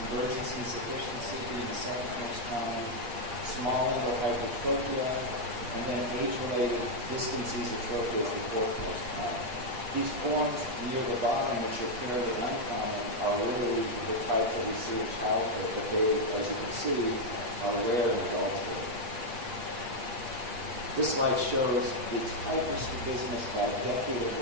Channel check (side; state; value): left; late; 8.6 ms